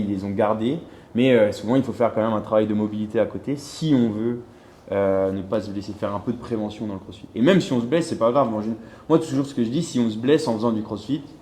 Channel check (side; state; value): both; identical; correlation 1.00